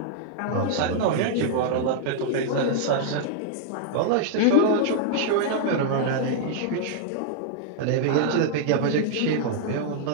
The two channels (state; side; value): different; both; correlation 0.00